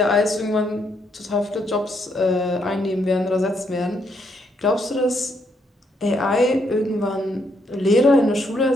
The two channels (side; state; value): both; normal; correlation 0.74